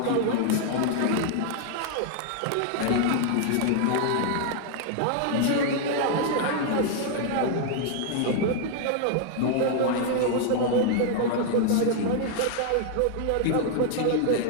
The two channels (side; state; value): both; different; correlation 0.00